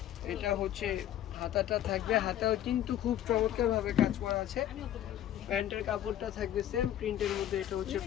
এটা হচ্ছে হাতাটা থাকবে, হাতাও কিন্তু খুব চমৎকার ভাবে কাজ করা আছে। প্যান্টের কাপড়টা থাকবে সেম প্রিন্টের মধ্যে। এটা হচ্ছে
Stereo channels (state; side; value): quieter; right; 11.7 dB